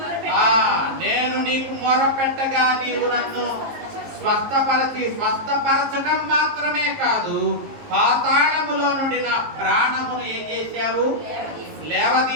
నేను నీకు మొరపెట్టగా నీవు నన్ను స్వస్థపరచడం మాత్రమే కాదు, పాతాళములో నుండి నా ప్రాణమును ఏం చేశావు?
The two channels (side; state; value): left; late; 19 ms